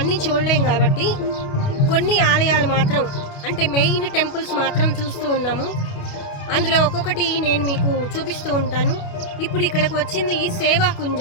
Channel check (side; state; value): right; late; 29 ms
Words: చూడలేం కాబట్టి కొన్ని ఆలయాలు మాత్రం, అంటే మెయిన్ టెంపుల్స్ మాత్రం చూస్తూ ఉన్నాము. అందులో ఒక్కొక్కటి నేను మీకు చూపిస్తూ ఉంటాను. ఇప్పుడు ఇక్కడికి వచ్చింది